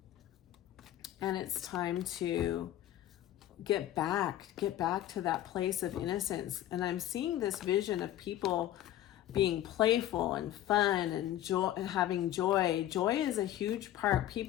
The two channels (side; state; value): right; quieter; 12.9 dB